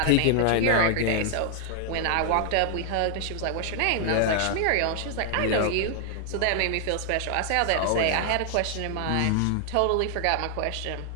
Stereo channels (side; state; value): both; different; correlation 0.00